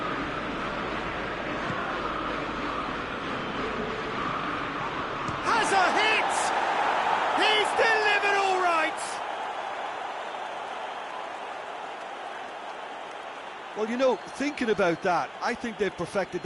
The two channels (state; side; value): identical; both; correlation 1.00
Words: Has a hit! He's delivered all right! Well, you know, thinking about that, I think they've perfected